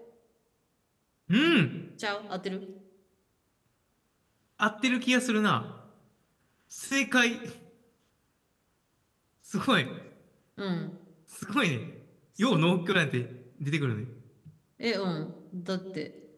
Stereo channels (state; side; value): identical; both; correlation 1.00